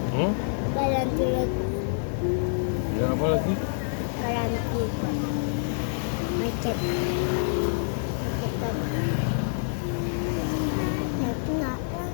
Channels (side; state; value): right; silent; digital silence